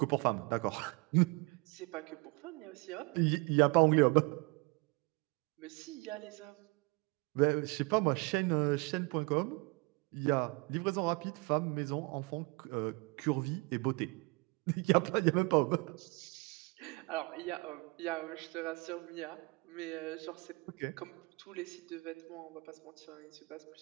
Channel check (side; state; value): left; quieter; 27.5 dB